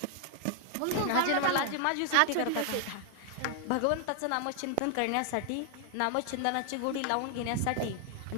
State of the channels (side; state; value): both; different; correlation 0.00